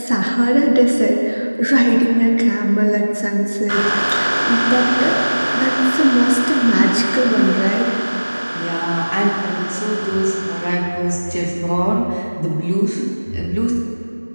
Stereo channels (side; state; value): both; inverted; correlation -1.00